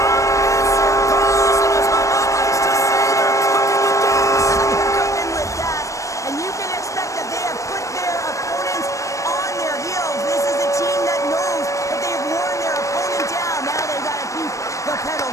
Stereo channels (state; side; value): late; right; 0.15 ms